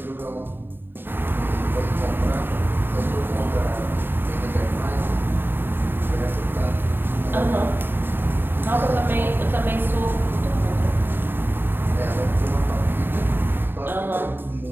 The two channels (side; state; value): left; late; 0.098 ms